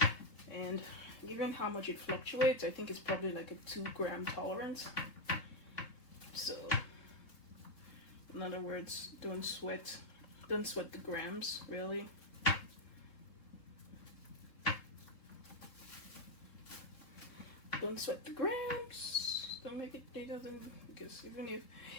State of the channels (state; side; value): late; right; 3.7 ms